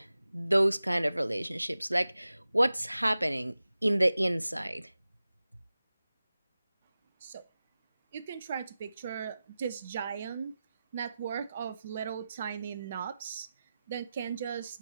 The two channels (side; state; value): both; inverted; correlation -0.95